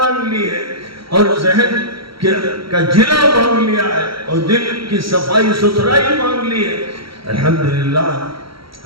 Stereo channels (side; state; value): left; late; 0.75 ms